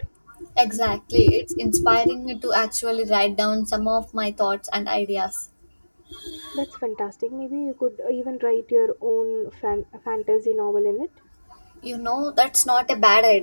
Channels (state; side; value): inverted; both; correlation -1.00